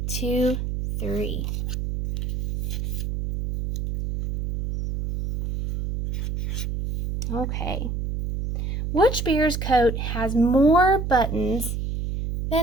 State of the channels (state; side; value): noise; right; hum, 3 dB below the sound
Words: 2, 3. Okay. Which bear's coat has more buttons